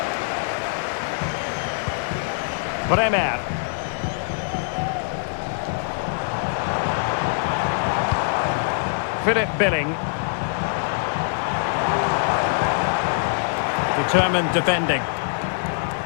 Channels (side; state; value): right; silent; digital silence